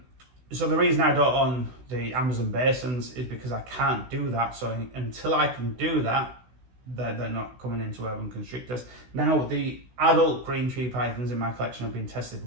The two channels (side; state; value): left; late; 16 ms